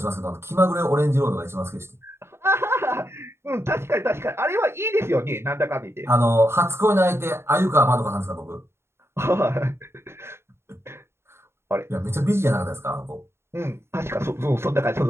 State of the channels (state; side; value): late; left; 0.12 ms